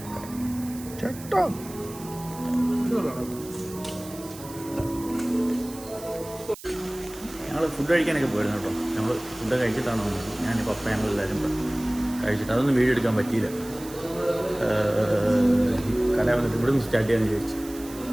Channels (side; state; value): right; noise; hiss, 16 dB below the sound